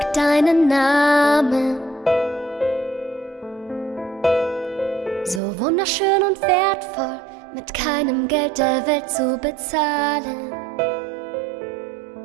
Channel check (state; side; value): drops out; left; at 5.4 s